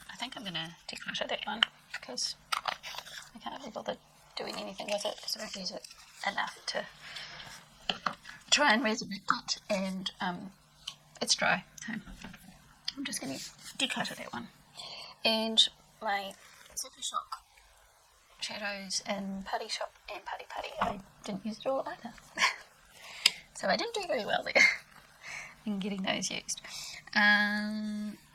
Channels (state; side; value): identical; both; correlation 1.00